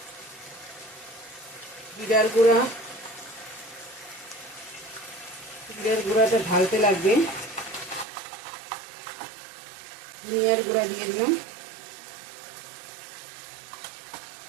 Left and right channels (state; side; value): drops out; left; at 8.1 s